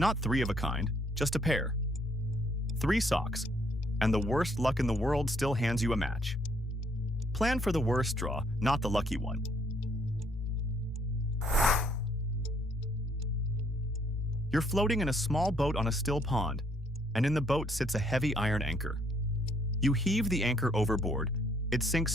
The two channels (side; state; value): both; normal; correlation 0.67